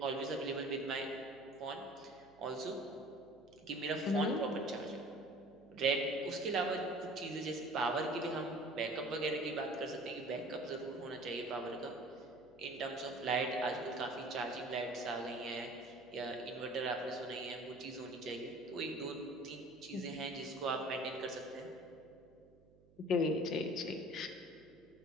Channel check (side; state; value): right; noise; hum, 27 dB below the sound